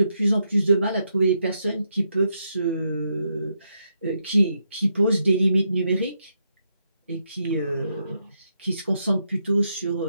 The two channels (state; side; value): inverted; both; correlation -0.80